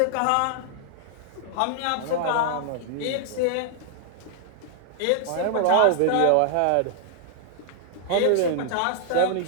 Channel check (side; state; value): both; different; correlation -0.01